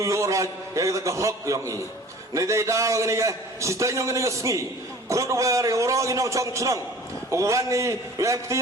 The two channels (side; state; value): both; normal; correlation 0.45